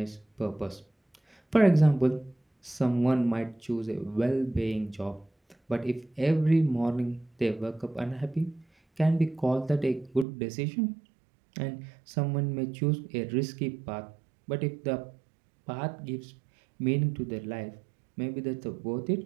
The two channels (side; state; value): left; drops out; at 10.2 s